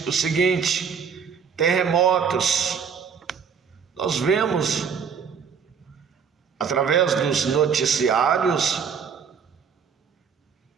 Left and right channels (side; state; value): left; quieter; 6.7 dB